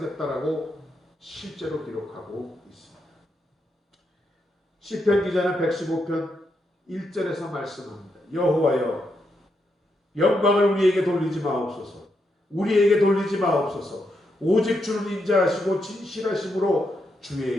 실제로 기록하고 있습니다. 시편 기자는 115편 1절에서 말씀합니다. 여호와여, 영광을 우리에게 돌리지 마옵소서. 우리에게 돌리지 마옵소서. 오직 주는 인자하시고 진실하심으로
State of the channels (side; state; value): both; normal; correlation 0.81